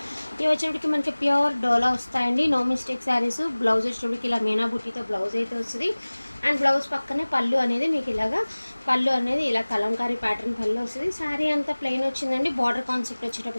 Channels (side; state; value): both; inverted; correlation -1.00